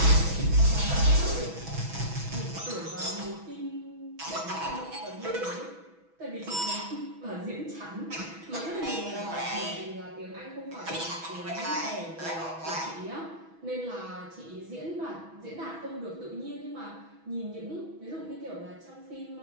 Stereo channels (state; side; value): late; left; 6.1 ms